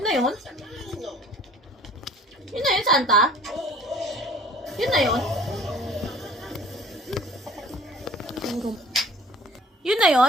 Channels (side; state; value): both; normal; correlation 0.49